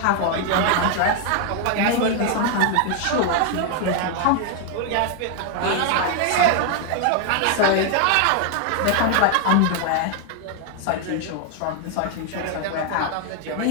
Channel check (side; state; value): both; different; correlation 0.00